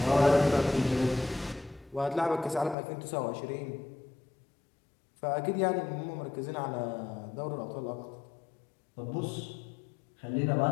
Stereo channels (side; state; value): right; drops out; at 2.8 s